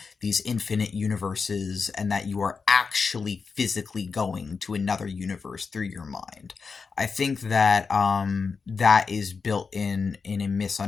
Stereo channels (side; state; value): right; quieter; 5.1 dB